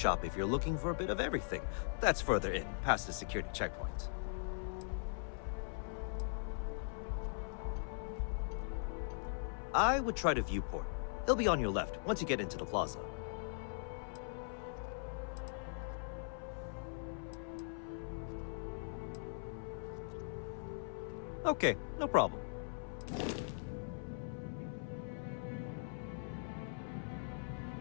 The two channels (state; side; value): silent; right; 51 dB below the other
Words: if you're looking for a bit of everything. That's further in, past the security checkpoint. I would try the viewport. It'll be on your left once you get into the plaza. Okay, no problem.